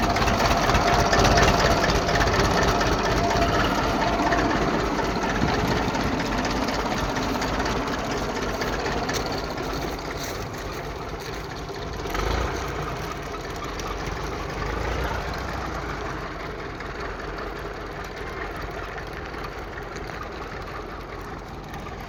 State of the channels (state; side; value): identical; both; correlation 1.00